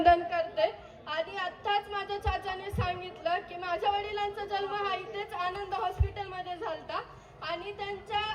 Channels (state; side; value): identical; both; correlation 1.00